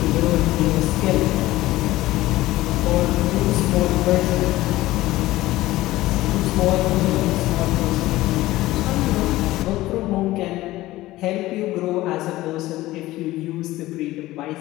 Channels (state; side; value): quieter; right; 17.1 dB